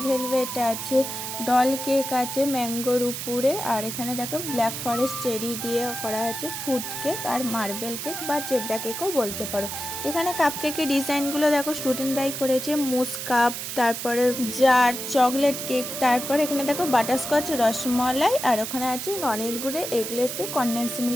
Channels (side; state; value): right; noise; hiss, 6 dB below the sound